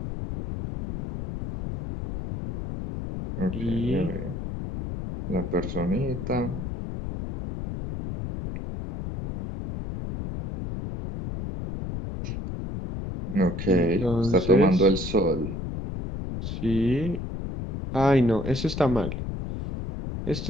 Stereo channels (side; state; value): left; noise; rumble, 6 dB below the sound